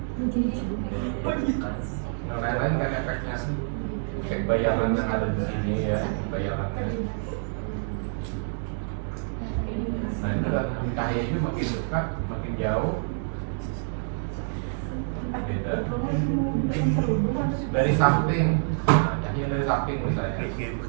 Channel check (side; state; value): left; silent; digital silence